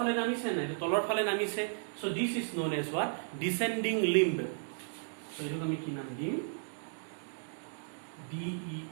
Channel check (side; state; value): left; silent; digital silence